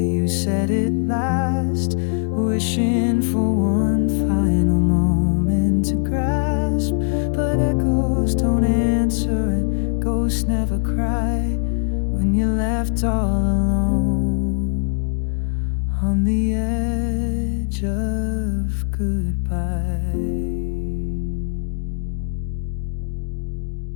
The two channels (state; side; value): silent; right; digital silence